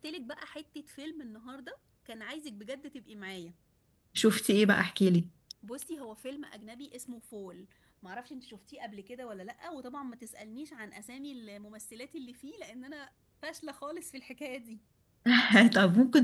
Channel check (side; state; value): both; identical; correlation 1.00